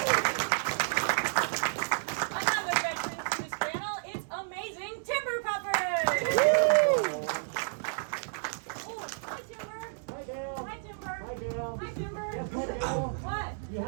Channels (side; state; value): left; silent; digital silence